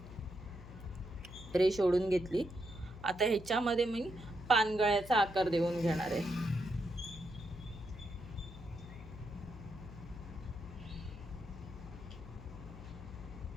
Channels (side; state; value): left; noise; hum, 14 dB below the sound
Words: रेष ओढून घेतली. आता ह्याच्यामध्ये मी पानगळ्याचा आकार देऊन घेणार आहे.